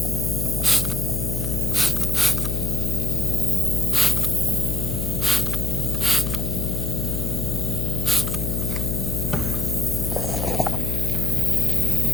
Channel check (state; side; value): noise; left; hum, 1 dB below the sound